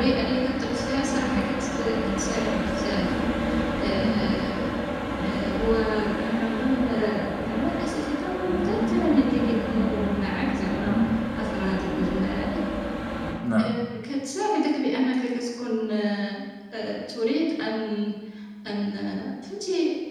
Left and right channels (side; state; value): both; identical; correlation 1.00